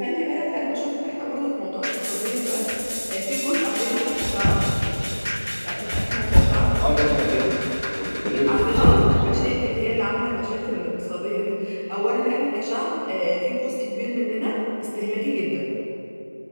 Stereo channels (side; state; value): both; inverted; correlation -1.00